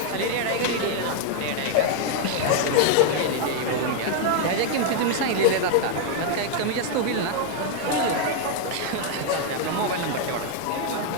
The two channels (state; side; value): different; both; correlation 0.00